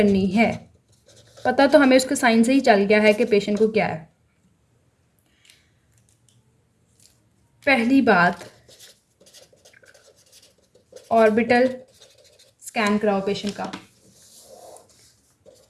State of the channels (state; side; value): identical; both; correlation 1.00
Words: है, पता तो हमें उसके साइन से ही चल गया है कि पेशेंट को क्या है। पहली बात, ऑर्बिटल स्कैन कराओ पेशेंट का।